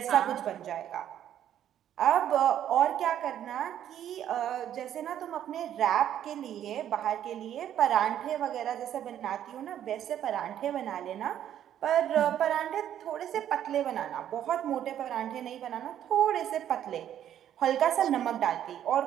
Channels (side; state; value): left; quieter; 10.7 dB